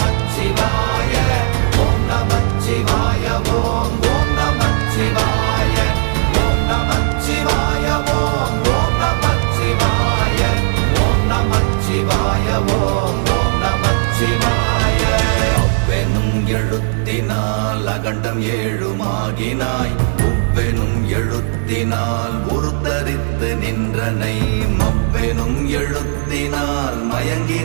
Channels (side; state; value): left; silent; 69 dB below the other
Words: ஓம் நமச்சிவாய ஓம் ஓம் நமச்சிவாய ஓம் நமச்சிவாய ஓம் ஓம் நமச்சிவாய ஓம் நமச்சிவாய ஓம் ஓம் நமச்சிவாய. அவ்வெனும் எழுத்தினால் அகண்டம் ஏழுமாகினாய், உவ்வெனும் எழுத்தினால் உருத்தரித்து நின்றனை, மவ்வெனும் எழுத்தினால்